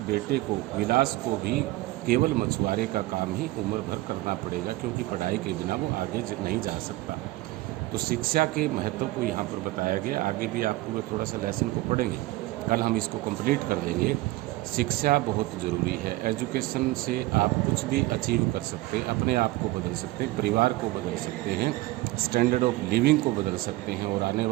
बेटे को, विलास को भी केवल मछुआरे का काम ही उम्र भर करना पड़ेगा, क्योंकि पढ़ाई के बिना वो आगे नहीं जा सकता। तो शिक्षा के महत्व को यहाँ पर बताया गया। आगे भी आप पूरे थोड़ा सा लेसन को पढ़ेंगे, कल हम इसको कंप्लीट कर देंगे। शिक्षा बहुत ज़रूरी है। एजुकेशन से आप कुछ भी अचीव कर सकते हैं, अपने आप को बदल सकते हैं, परिवार को बदल सकते हैं, स्टैंडर्ड ऑफ लिविंग को बदल सकते हैं। और आने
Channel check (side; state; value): left; quieter; 19.2 dB